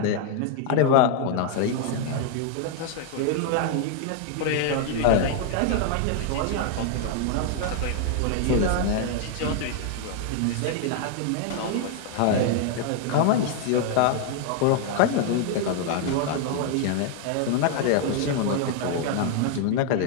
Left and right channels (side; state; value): both; different; correlation 0.00